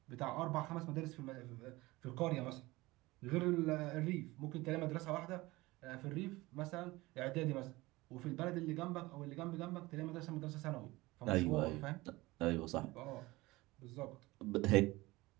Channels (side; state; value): left; quieter; 20.4 dB